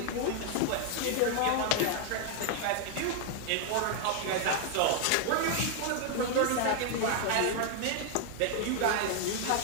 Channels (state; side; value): different; both; correlation 0.00